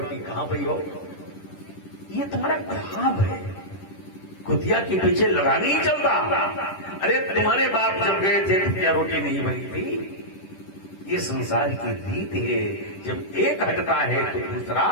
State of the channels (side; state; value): right; late; 10 ms